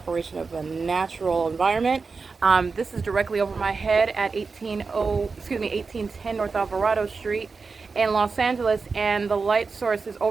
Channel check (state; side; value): quieter; left; 4.6 dB